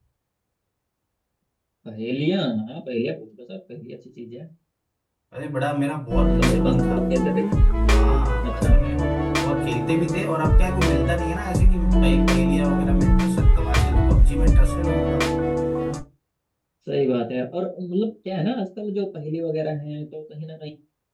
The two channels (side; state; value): both; identical; correlation 1.00